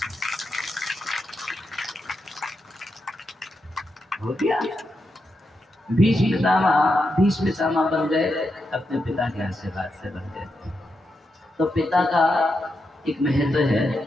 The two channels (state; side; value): normal; both; correlation 0.85